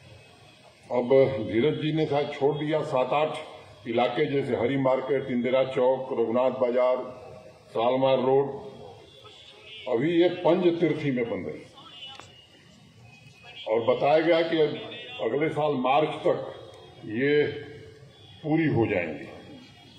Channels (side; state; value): both; identical; correlation 1.00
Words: अब धीरज जी ने शायद छोड़ दिया 7-8 इलाके, जैसे हरी मार्केट, इंदिरा चौक, रघुनाथ बाजार, सालमार रोड, अभी ये पंज तीर्थी में बन रही, और बताया गया कि अगले साल मार्च तक ये पूरी हो जाएंगी।